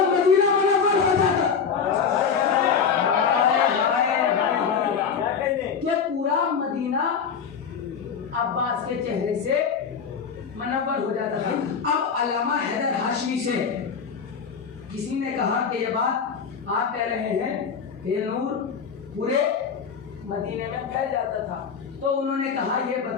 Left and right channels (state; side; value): quieter; right; 6.4 dB